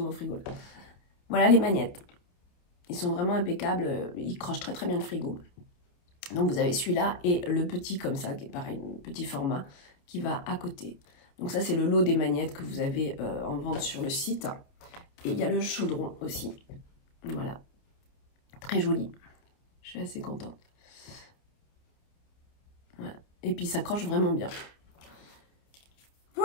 frigo là. Voilà les magnettes. Ils sont vraiment impeccables, ils crochent très très bien le frigo. Donc vous avez celui-là et le petit comme ça, qui est pareil, petit format, qui va à côté. Donc ça c'est le lot des magnettes que vous avez en vente sur le site. Et il y a le chaudron aussi. Voilà. Très joli. Je suis assez contente. Voilà. Et puis ça croche vraiment bien.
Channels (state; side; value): late; right; 28 ms